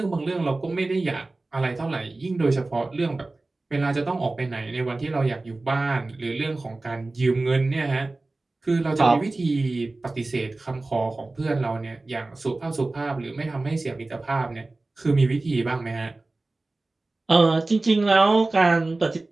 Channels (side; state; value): left; quieter; 3.1 dB